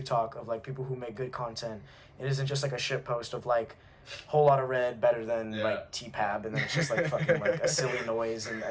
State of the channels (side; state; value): both; identical; correlation 1.00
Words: talk of, like, people who make good content. It isn't just, like, a shit post of, like, whole lot of red better than, like, T-Pab, and then it's just, like, fucking, like, a silly noise